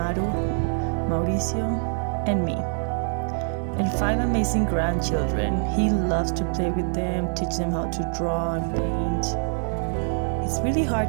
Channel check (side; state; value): left; silent; 62 dB below the other